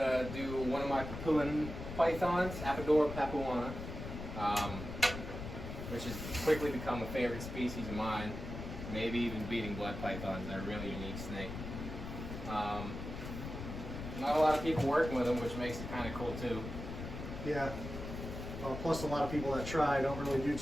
to do one of my Papuan pythons, Apodora papuana, which has quickly become a favorite species of mine, maybe even beating blood pythons. They're a really unique snake. Not a lot of people working with them, which makes it kind of cool too. Yeah. Plus a lot of people that try don't really do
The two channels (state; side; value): noise; left; rumble, 8 dB below the sound